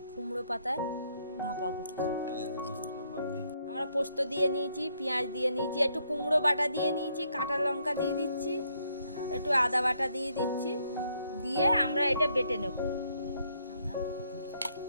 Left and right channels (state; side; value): inverted; both; correlation -0.72